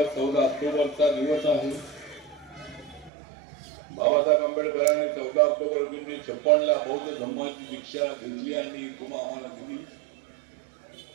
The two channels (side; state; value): left; drops out; at 3.1 s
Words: 14 ऑक्टोबरचा दिवस आहे. बाबासाहेब आंबेडकरांनी 14 ऑक्टोबर 1956 बौद्ध धर्माची दीक्षा घेतली आणि तुम्हा आम्हाला दिली.